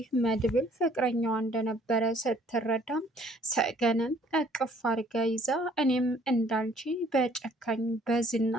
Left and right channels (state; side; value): normal; both; correlation 0.60